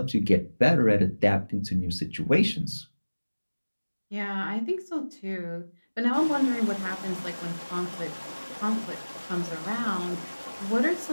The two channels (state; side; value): inverted; both; correlation -1.00